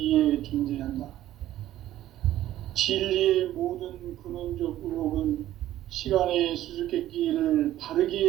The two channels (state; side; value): quieter; left; 13.5 dB